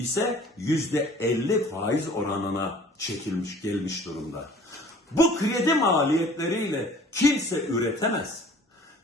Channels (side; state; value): both; normal; correlation 0.49